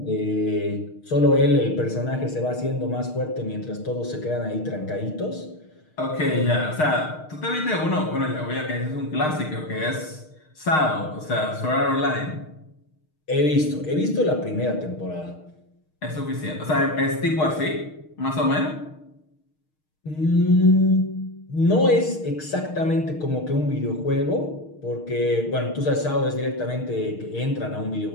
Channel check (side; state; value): right; late; 6.5 ms